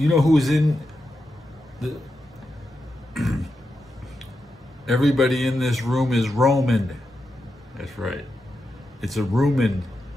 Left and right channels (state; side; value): normal; both; correlation 0.87